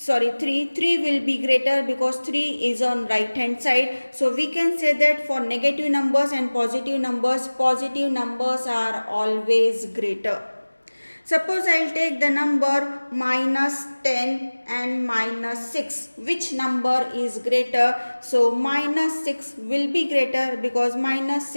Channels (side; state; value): both; inverted; correlation -1.00